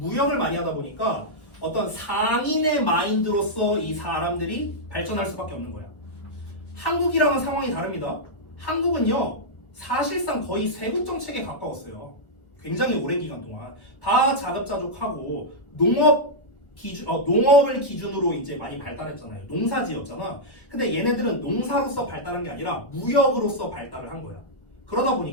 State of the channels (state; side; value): late; right; 1.4 ms